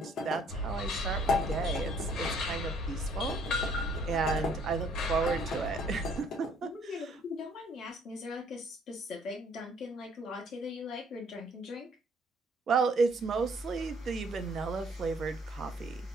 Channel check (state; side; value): normal; both; correlation 0.62